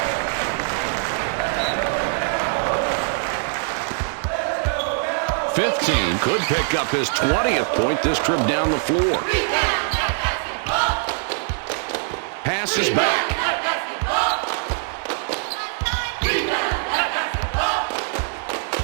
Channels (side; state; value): left; silent; digital silence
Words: .15 could pick up his 20th point this trip down the floor. Passes back.